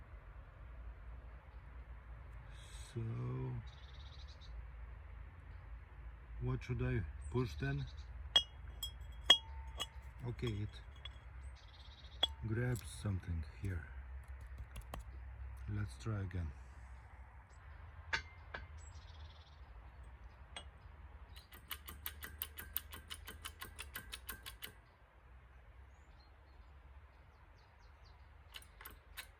So what should I push then? Okay, it grabs something here. Let's try again.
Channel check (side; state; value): both; identical; correlation 1.00